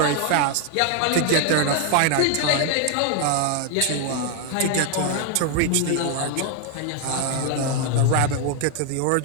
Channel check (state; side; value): different; both; correlation 0.01